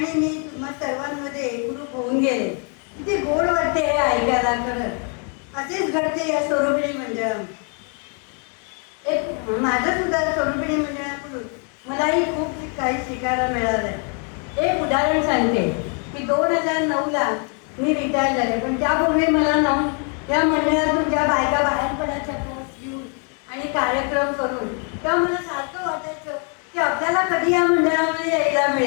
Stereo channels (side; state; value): right; quieter; 39.9 dB